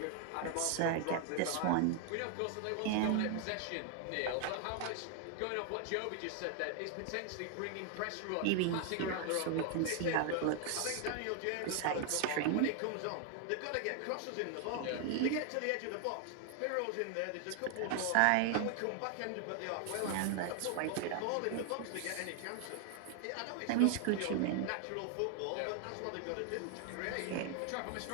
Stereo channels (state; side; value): different; both; correlation 0.00